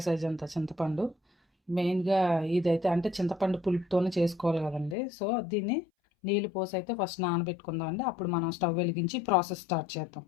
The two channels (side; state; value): right; drops out; at 5.0 s